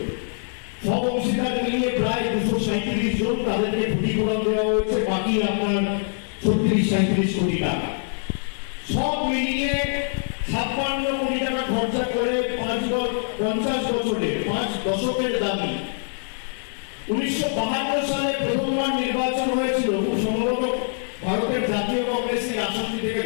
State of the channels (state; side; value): silent; right; 63 dB below the other